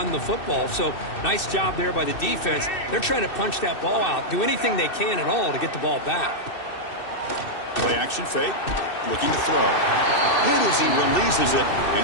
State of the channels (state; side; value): late; right; 2.6 ms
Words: the football. So nice job there by the defense. They're trying to punch that ball out, do anything they can at all to get the ball back. Play action fake, looking to throw. Hit as he releases it,